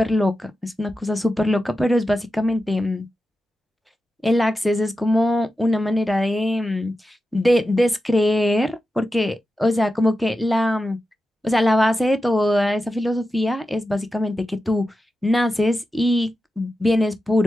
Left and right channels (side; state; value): both; normal; correlation 0.91